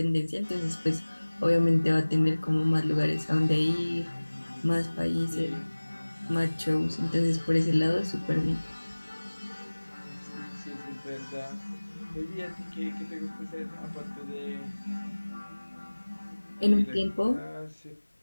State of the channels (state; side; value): inverted; both; correlation -1.00